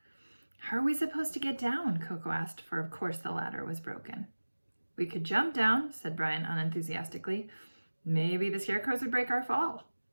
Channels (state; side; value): inverted; both; correlation -1.00